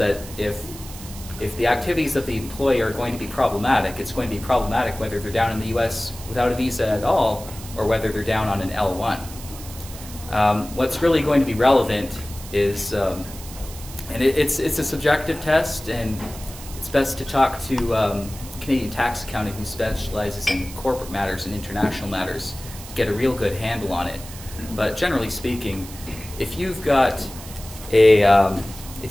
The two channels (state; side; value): noise; right; hiss, 15 dB below the sound